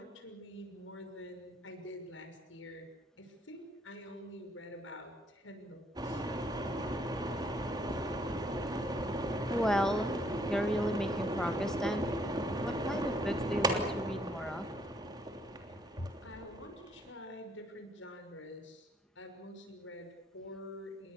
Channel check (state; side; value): normal; both; correlation 0.67